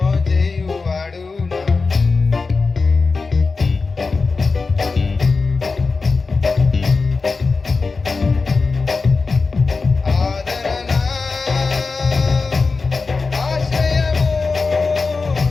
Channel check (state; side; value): quieter; right; 4.2 dB